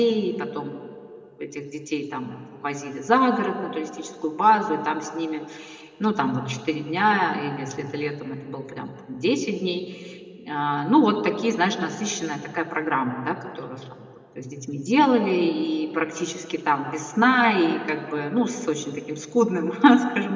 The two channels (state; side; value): identical; both; correlation 1.00